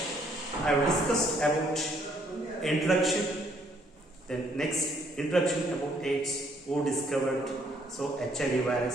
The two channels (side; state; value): both; normal; correlation 0.67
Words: I discussed about introduction, then next introduction about AIDS, who discovered, so HIV